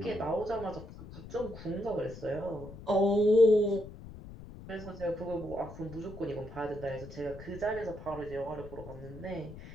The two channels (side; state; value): left; noise; rumble, 14 dB below the sound